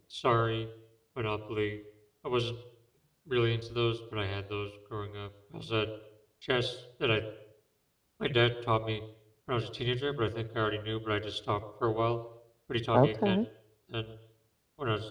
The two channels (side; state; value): both; identical; correlation 1.00